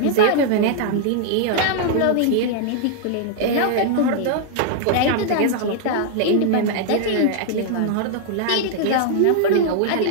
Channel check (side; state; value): both; different; correlation 0.00